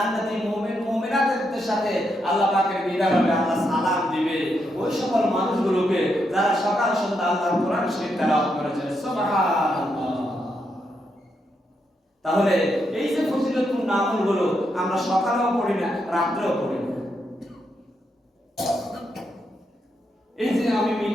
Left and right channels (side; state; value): both; normal; correlation 0.81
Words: মুমিন মুমিনাতের সাথে আল্লাহ পাকের দিদার হবে, আল্লাহ সালাম দিবে। দিবে ওই সকল মানুষগুলোকে যারা সকাল সন্ধ্যা আল্লাহর কোরআন শরীফ তেলাওয়াত করেছে। সুবহানাল্লাহ। তাহলে এই যে ফজিলতপূর্ণ আমলগুলো আমরা সকালেও পড়ি না, রাত্রেও পড়ি না। এই যে আমি